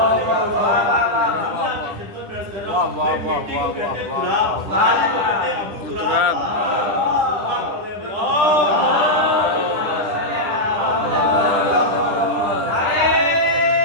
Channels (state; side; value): late; left; 10 ms